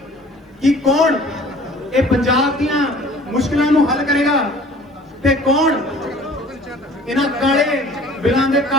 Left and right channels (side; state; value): both; normal; correlation 0.49